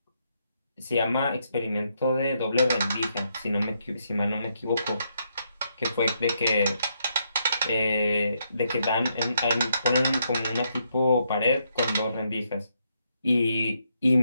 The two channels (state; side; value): inverted; both; correlation -0.77